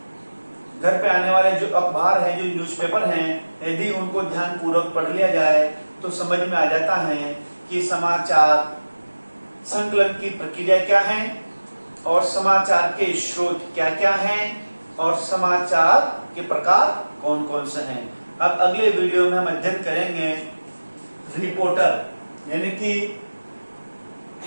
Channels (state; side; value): inverted; both; correlation -1.00